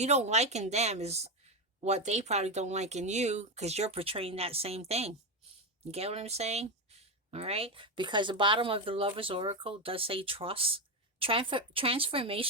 don't like in them is what they probably don't like in you, because you're portraying that same thing. You get what I'm saying? All right? Because the bottom of the Lover's Oracle does say trust.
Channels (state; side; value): normal; both; correlation 0.11